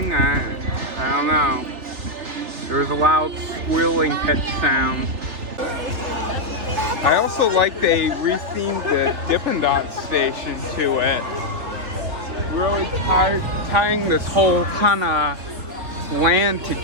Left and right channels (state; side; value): late; left; 3.2 ms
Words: I don't know. There was a loud squealing pitch sound. I also like they rethemed the Dippin' Dots station to it. Really tying this whole kind of land